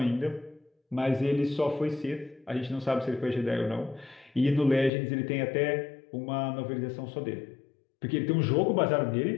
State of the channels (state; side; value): drops out; right; at 4.9 s